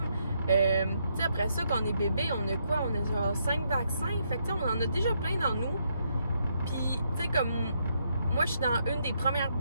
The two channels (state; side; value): inverted; both; correlation -0.76